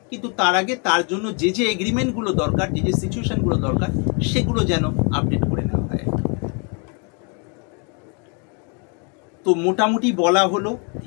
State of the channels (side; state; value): right; quieter; 36.2 dB